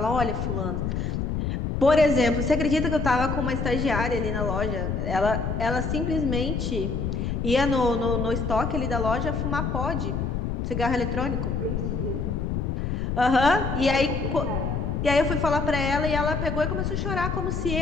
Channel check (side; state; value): left; noise; rumble, 1 dB below the sound